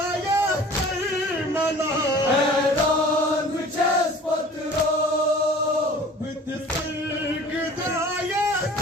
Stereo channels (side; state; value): both; normal; correlation 0.45